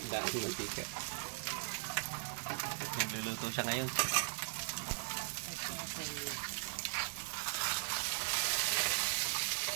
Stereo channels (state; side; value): silent; left; digital silence